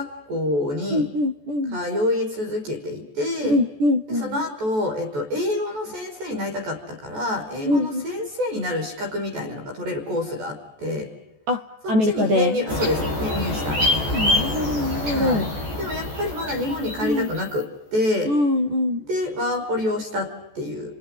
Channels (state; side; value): late; left; 14 ms